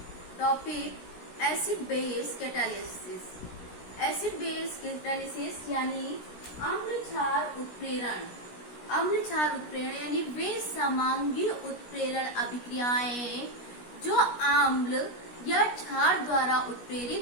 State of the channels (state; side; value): late; right; 16 ms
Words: topic acid base catalysis. Acid base catalysis यानी अम्ल क्षार उत्प्रेरण। अम्ल क्षार उत्प्रेरण यानी वे समांगी उत्प्रेरण अभिक्रियाएं जो अम्ल या क्षार द्वारा उत्प्रेरित